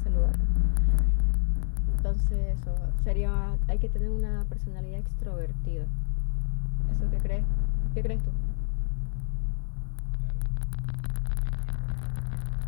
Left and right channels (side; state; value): right; silent; 56 dB below the other